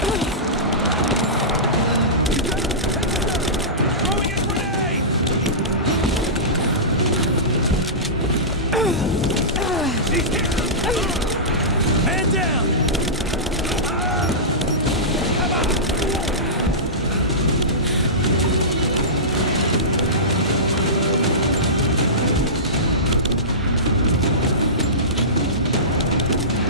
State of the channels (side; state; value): both; normal; correlation -0.20